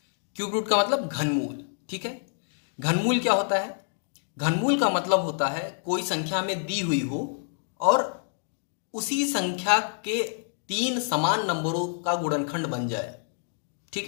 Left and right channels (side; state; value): right; silent; digital silence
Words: क्यूब रूट का मतलब घनमूल। ठीक है, घनमूल क्या होता है? घनमूल का मतलब होता है कोई संख्या में दी हुई हो और उसी संख्या के तीन समान नंबरों का गुणनखंड बन जाए। ठीक